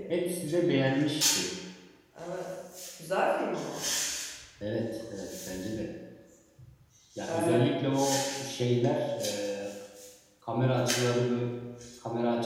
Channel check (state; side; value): identical; both; correlation 1.00